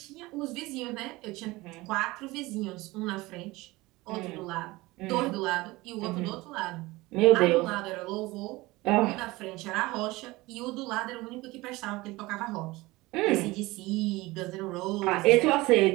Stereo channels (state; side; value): quieter; left; 20.8 dB